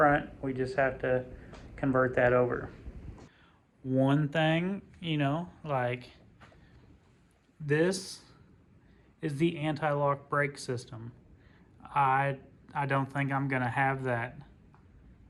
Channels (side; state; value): both; identical; correlation 1.00